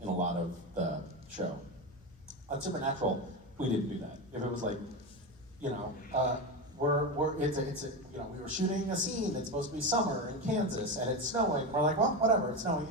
a lot of the show. On Supernatural, we didn't do that. If it was like, we were shooting a scene that's supposed to be summer in Kansas and it's snowing. We're like, well, whatever, it's snowing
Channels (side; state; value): both; normal; correlation 0.18